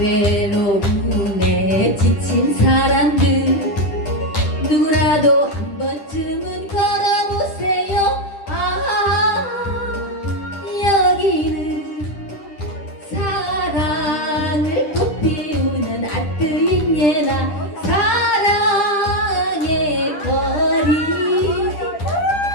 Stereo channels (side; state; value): right; late; 10 ms